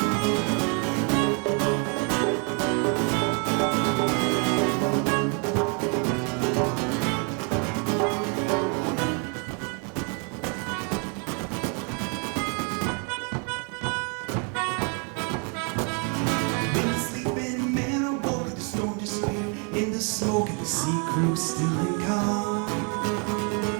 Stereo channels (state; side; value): quieter; left; 37.2 dB